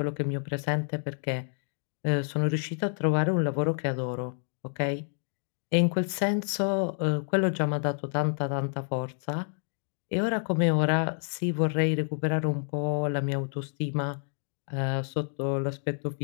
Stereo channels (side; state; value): right; silent; 59 dB below the other